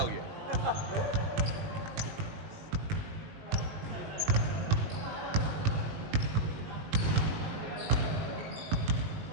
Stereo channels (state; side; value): late; left; 19 ms